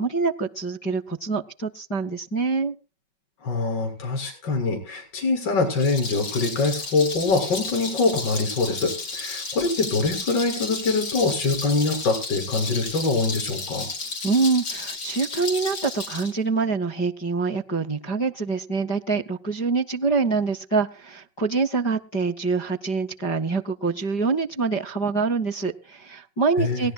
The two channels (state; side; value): late; right; 5.3 ms